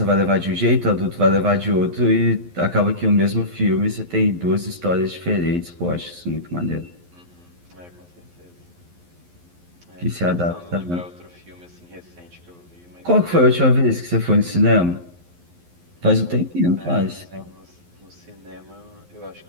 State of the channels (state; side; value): late; left; 11 ms